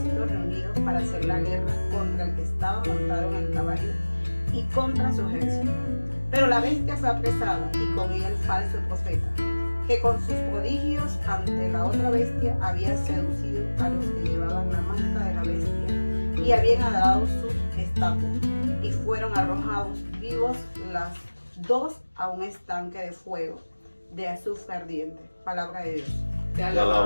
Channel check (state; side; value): inverted; both; correlation -1.00